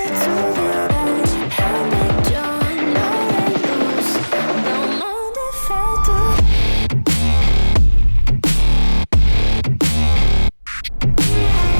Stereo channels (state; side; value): inverted; both; correlation -1.00